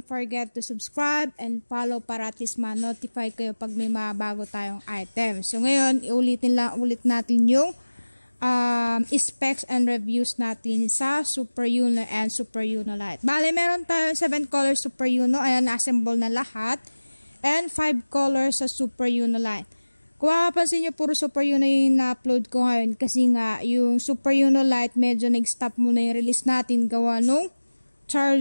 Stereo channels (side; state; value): both; inverted; correlation -1.00